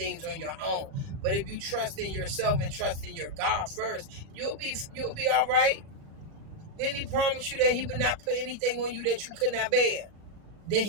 on your own. But if you trust in yourself and trust in your God first, you'll be all right. Didn't he promise you that he would not put anything on you that you could not bear? Then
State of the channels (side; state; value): left; late; 37 ms